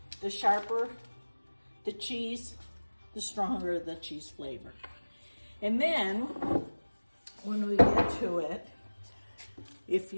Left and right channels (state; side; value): inverted; both; correlation -1.00